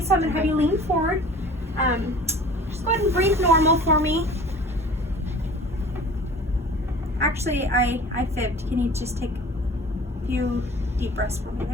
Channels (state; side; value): normal; both; correlation 0.44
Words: I'm going to have you lean forward. Just go ahead and breathe normal for me. Actually, I fibbed. Can you just take a few deep breaths for me?